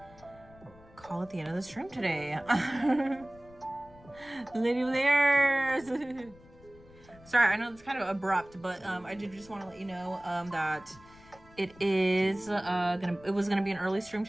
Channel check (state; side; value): noise; left; rumble, 24 dB below the sound